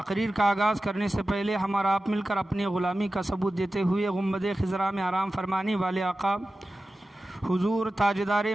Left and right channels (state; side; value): normal; both; correlation 0.94